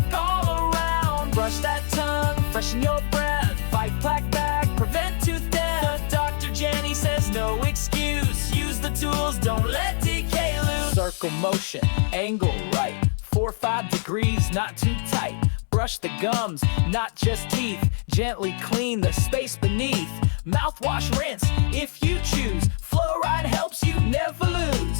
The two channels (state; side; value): silent; right; digital silence